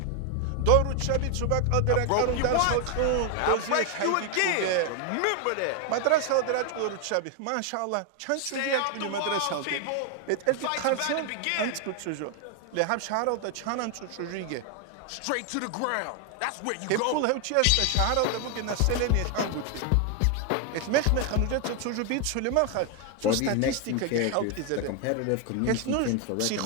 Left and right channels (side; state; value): both; different; correlation 0.01